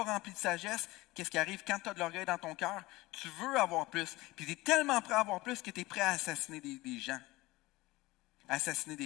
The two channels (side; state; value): right; quieter; 20.0 dB